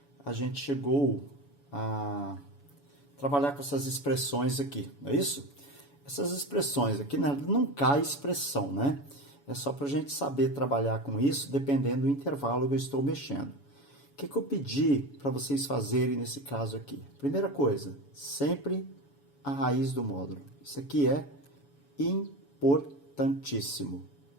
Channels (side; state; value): right; late; 7.0 ms